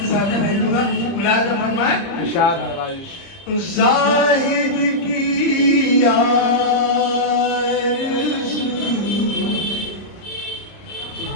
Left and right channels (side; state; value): right; late; 30 ms